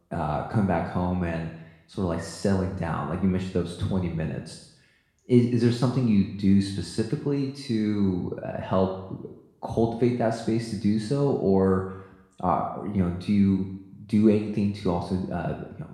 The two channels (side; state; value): both; identical; correlation 1.00